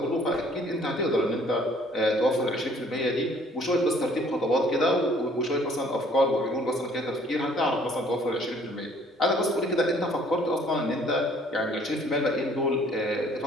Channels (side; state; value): both; normal; correlation 0.58